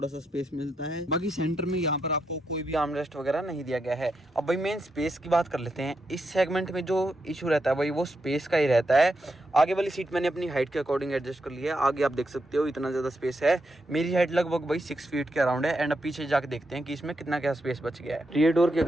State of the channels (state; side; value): normal; both; correlation 0.83